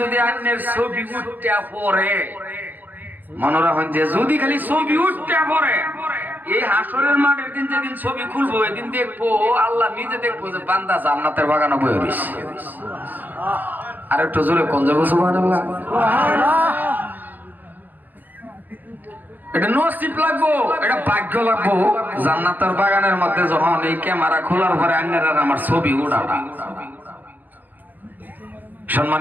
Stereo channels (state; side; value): late; left; 0.085 ms